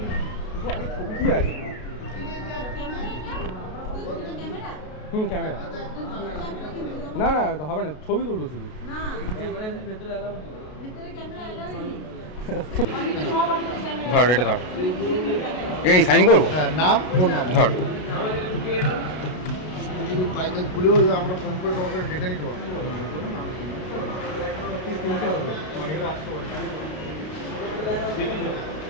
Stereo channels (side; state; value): right; late; 33 ms